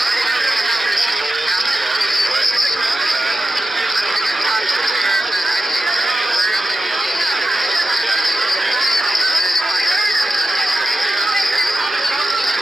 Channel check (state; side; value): normal; both; correlation 0.91